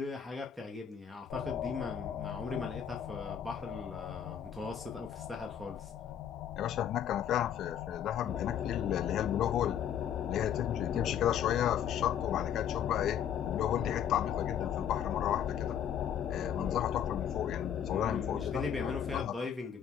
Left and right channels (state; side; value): quieter; right; 9.2 dB